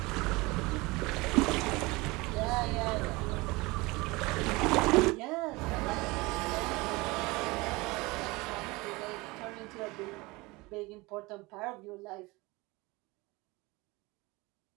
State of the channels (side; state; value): left; quieter; 23.3 dB